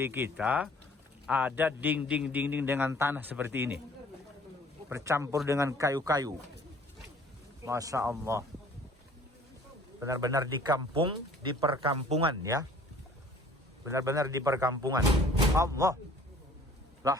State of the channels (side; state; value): both; normal; correlation 0.53